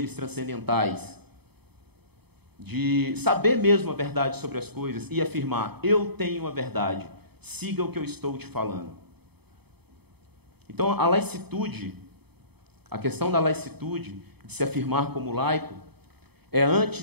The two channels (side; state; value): left; late; 0.97 ms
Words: transcendentais? De saber mesmo a verdade sobre as coisas e afirmar, eu tenho a verdade, siga o que eu estou te falando. Então, a laicitude, a questão da laicitude, de se afirmar como laico, é,